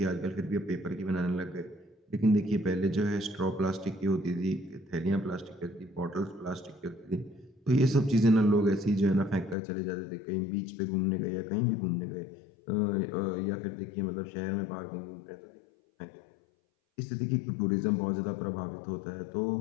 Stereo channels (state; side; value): drops out; right; at 9.6 s